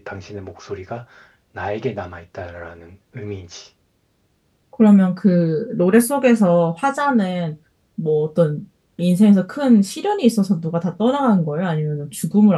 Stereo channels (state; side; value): identical; both; correlation 1.00